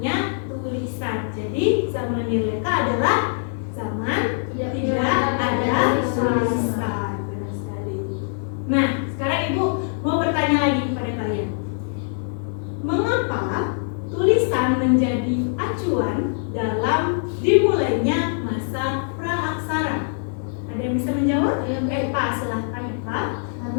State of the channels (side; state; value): right; silent; digital silence